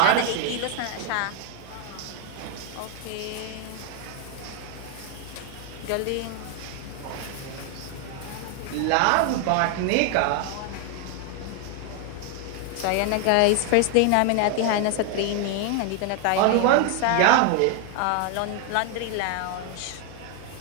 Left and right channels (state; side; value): different; both; correlation 0.00